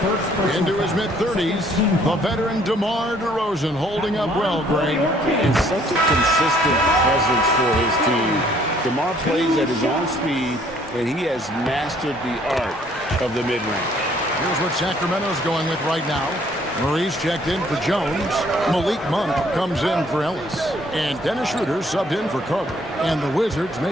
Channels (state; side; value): normal; both; correlation 0.62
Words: Into his mid-30s, the veteran DeMar DeRozan holding up well, Greg. And such a consistent presence for his team. DeMar plays at his own speed, and he has mastered the art of the mid-range. Here's what Sacramento's going with right now. Murray's checked in for Jones. Malik Monk comes in for Ellis. And Dennis Schroeder subbed in for Carter. And the Wizards